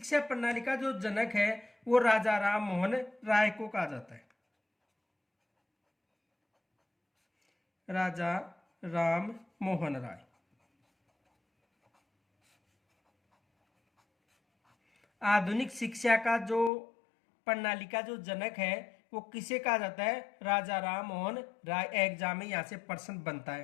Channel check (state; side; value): drops out; right; at 16.7 s